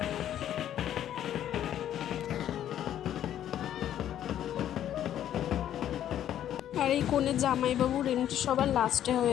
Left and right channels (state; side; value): quieter; right; 11.0 dB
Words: আর এই কনের জামাইবাবুর এন্ট্রি সবার লাস্টে